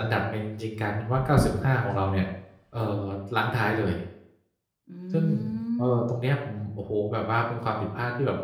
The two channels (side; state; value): both; identical; correlation 1.00